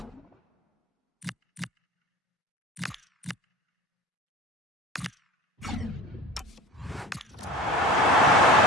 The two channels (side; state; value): both; normal; correlation 0.38